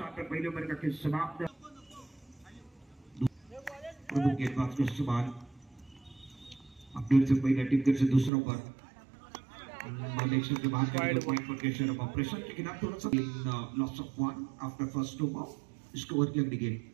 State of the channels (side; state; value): left; drops out; at 8.3 s